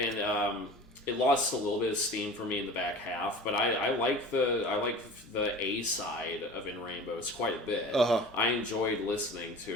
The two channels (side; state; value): both; normal; correlation 0.39